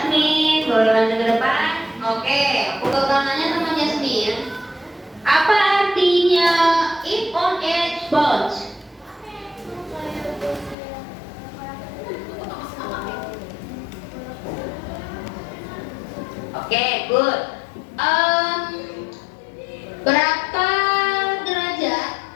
boleh lanjut ke depan? Oke, aku bakal nanya sama Yasmin. Apa artinya if on edge bounce? Oke, good. Berapa derajat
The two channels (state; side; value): drops out; right; at 10.8 s